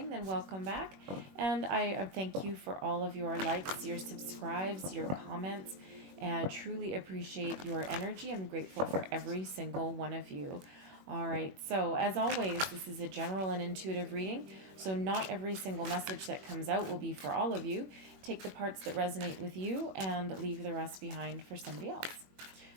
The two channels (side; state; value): left; late; 21 ms